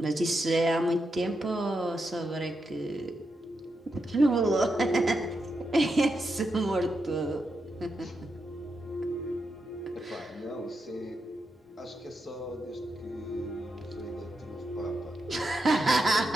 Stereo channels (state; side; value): normal; both; correlation 0.85